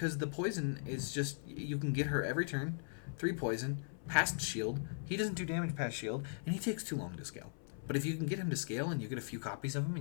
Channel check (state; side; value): silent; right; 52 dB below the other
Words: the poison is just, you can get her every turn, 3 poison, past shield, he doesn't do damage past shield, and he takes too long to scale. But if you can get him to scale and you get a few copies of him